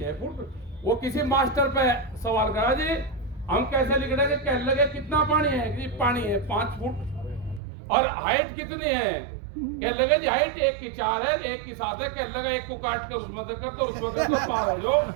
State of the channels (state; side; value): drops out; left; at 7.6 s